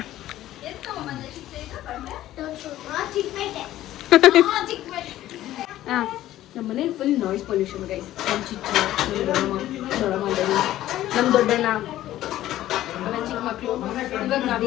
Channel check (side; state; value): right; quieter; 14.0 dB